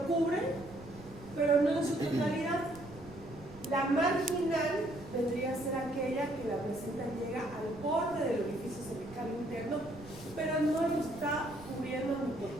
cubre, pero no en su totalidad. La marginal vendría a ser aquella que la placenta llega al borde del orificio cervical interno, pero no lo está cubriendo ni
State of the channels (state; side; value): noise; right; rumble, 19 dB below the sound